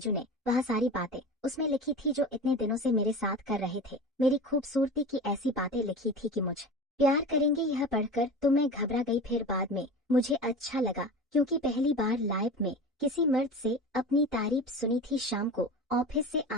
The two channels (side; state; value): both; normal; correlation 0.32